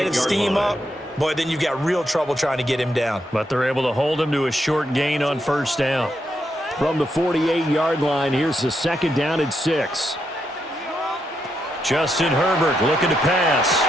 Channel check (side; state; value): both; normal; correlation 0.81